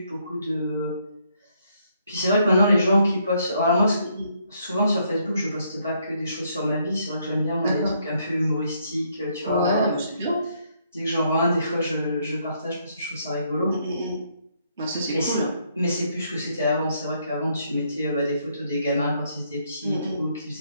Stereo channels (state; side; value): inverted; both; correlation -0.72